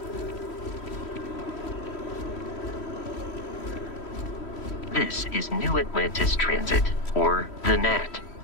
This is New Atlantis Transit, or the NAT.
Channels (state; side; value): late; right; 3.1 ms